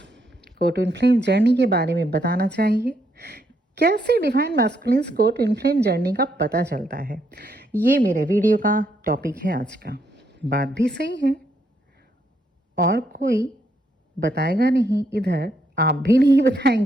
को ट्विन फ्लेम जर्नी के बारे में बताना चाहिए। कैसे डिवाइन मैस्कुलिन्स को ट्विन फ्लेम जर्नी का पता चलता है, ये मेरे वीडियो का टॉपिक है आज का। बात भी सही है, और कोई बताएगा नहीं इधर, आप भी नहीं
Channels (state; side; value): normal; both; correlation 0.75